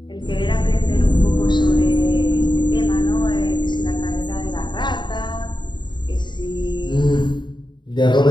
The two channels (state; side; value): late; right; 0.22 ms